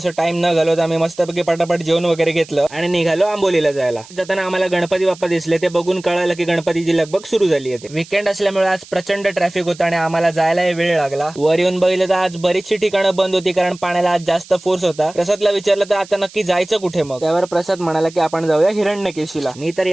टाइम न घालवता आम्ही मस्तपैकी पटापट जेवण वगैरे घेतलं आणि निघालो आंबोलीला जायला। जाताना आम्हाला गणपती बाप्पा दिसले, ते बघून कळालं की गणपतीची लगबग सुरू झाली आहे। वीकेंड असल्यामुळे आज प्रचंड ट्रॅफिक होता आणि आम्हाला जायला वेळ लागला। वर येऊन बघितलं तर आज बरीचशी ठिकाणं बंद होती, कारण पाण्याला आज जास्त फोर्स होता। प्रसादला विचारलं तर आता नक्की जायचं कुठे मग, त्यावर प्रसाद म्हणाला की आपण जाऊया हिरण्यकेशीला। मी तर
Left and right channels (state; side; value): noise; right; hiss, 20 dB below the sound